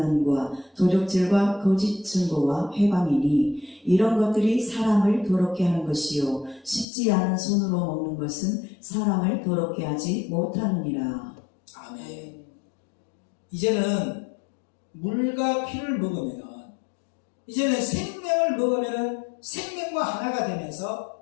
도적질과 거짓 증거와 회방이니 이런 것들이 사람을 더럽게 하는 것이요 씻지 않은 손으로 먹는 것은 사람을 더럽게 하지 못하느니라. 아멘. 이제는 물과 피를 먹으면 이제는 생명을 먹으면 생명과 하나가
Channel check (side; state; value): right; drops out; at 6.9 s